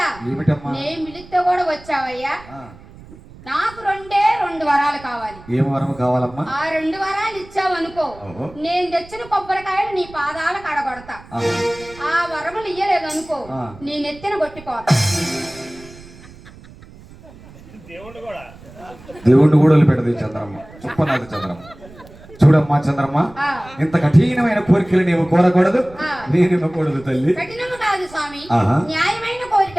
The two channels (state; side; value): noise; right; rumble, 20 dB below the sound